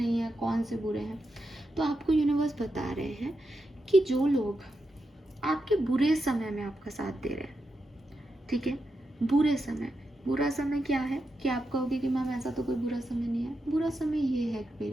हैं, कौन से बुरे हैं। तो आपको यूनिवर्स बता रहे हैं कि जो लोग आपके बुरे समय में आपका साथ दे रहे हैं, ठीक है, बुरे समय। बुरा समय क्या है कि आप कहोगे कि मैम ऐसा तो कोई बुरा समय नहीं है। बुरा समय ये है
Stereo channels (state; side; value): normal; both; correlation 0.87